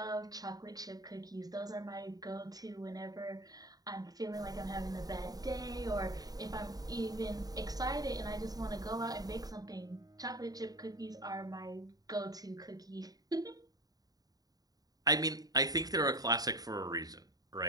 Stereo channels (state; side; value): late; left; 0.18 ms